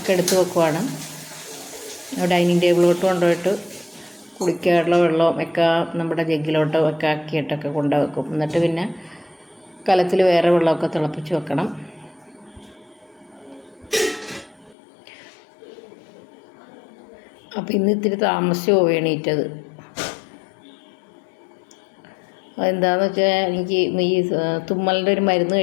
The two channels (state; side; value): drops out; right; at 14.8 s